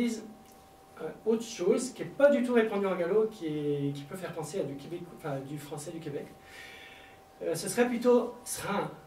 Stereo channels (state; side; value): identical; both; correlation 1.00